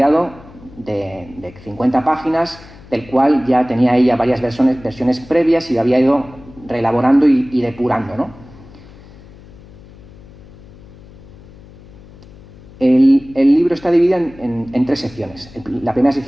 de 50 páginas, del cual ya tenía ella varias versiones previas y lo había ido reelaborando y depurando, ¿no? El libro está dividido en tres secciones. La primera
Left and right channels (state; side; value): noise; left; hum, 21 dB below the sound